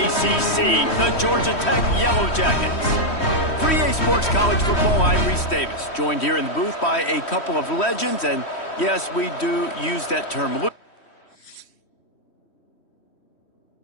the Georgia Tech Yellow Jackets. For EA Sports College Football, I'm Reese Davis, joined here in the booth by a couple of legends, and yes, we do use that term loosely.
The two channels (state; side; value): late; right; 3.1 ms